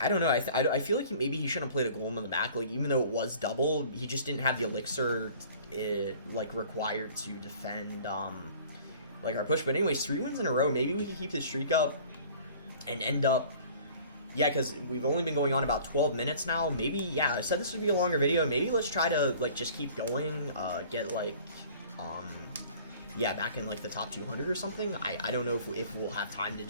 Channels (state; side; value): inverted; both; correlation -0.48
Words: I don't know, I feel like maybe he shouldn't have played a Golem in the back. Like, even though it was double, he just didn't have the Elixir, like, required to defend, like, our push. But anyways, 3 wins in a row. Maybe we can keep this streak up and end up, yeah, because we've only been going on about 12 minutes now. Maybe, yeah, I said this would be a longer video. Maybe let's try to, like, just keep going, get, like, yeah, back in, like, the top 200 or something. I don't know if we'll have time to